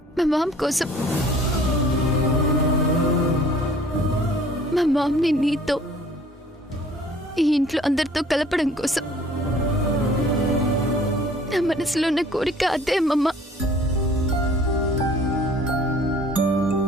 మా మామ్ కోసం. మా మామ్ని నీతో, ఈ ఇంట్లో అందరితో కలపడం కోసం. నా మనసులో ఉన్న కోరిక అదే అమ్మమ్మ.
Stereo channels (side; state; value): both; normal; correlation 0.53